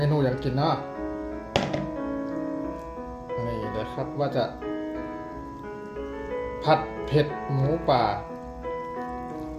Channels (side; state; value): both; identical; correlation 1.00